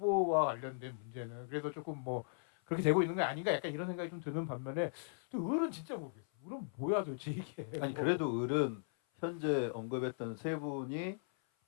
관련된 문제는. 그래서 조금 뭐 그렇게 되고 있는 게 아닌가 약간 이런 생각이 좀 드는 반면에 또 을은 진짜 모르겠어. 을은 뭐야 도대체 이게. 아니 그래도 을은 현재 언급했던 세 분이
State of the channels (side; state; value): right; silent; 52 dB below the other